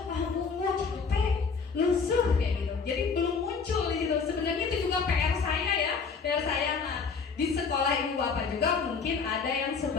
"Tunggu, capek, lusuh," kayak gitu. Jadi belum muncul gitu. Sebenarnya itu juga PR saya ya. PR saya di sekolah ibu bapak juga mungkin ada yang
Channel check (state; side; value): quieter; right; 5.3 dB